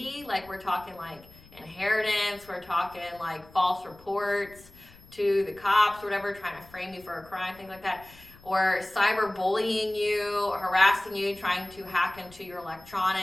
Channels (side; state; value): left; noise; rumble, 24 dB below the sound